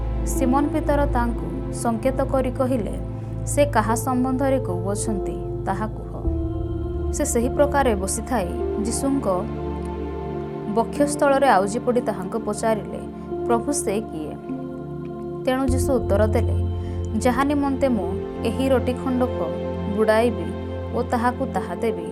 ସିମୋନ ପିତର ତାଙ୍କୁ ସଙ୍କେତ କରି କହିଲେ, ସେ କାହା ସମ୍ବନ୍ଧରେ କହୁଅଛନ୍ତି ତାହା କୁହ। ସେ ସେହି ପ୍ରକାରେ ବସିଥାଇ ଯୀଶୁଙ୍କ ବକ୍ଷସ୍ଥଳରେ ଆଉଜି ପଡ଼ି ତାହାଙ୍କୁ ପଚାରିଲେ, ପ୍ରଭୁ, ସେ କିଏ? ତେଣୁ ଯୀଶୁ ଉତ୍ତର ଦେଲେ, ଯାହା ନିମନ୍ତେ ମୁଁ ଏହି ରୋଟି ଖଣ୍ଡକ ବୁଡ଼ାଇବି ଓ ତାହାକୁ ତାହା ଦେବି,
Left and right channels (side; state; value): both; identical; correlation 1.00